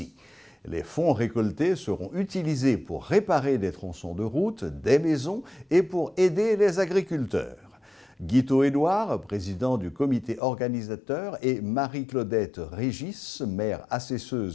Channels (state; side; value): drops out; right; at 10.4 s